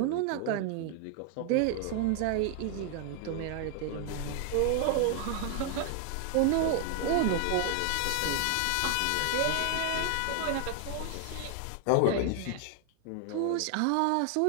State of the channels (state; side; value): different; both; correlation 0.00